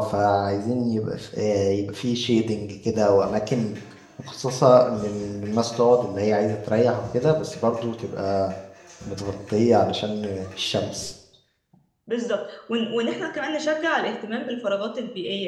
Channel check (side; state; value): both; identical; correlation 1.00